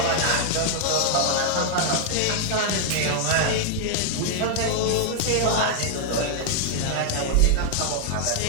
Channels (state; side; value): different; both; correlation -0.01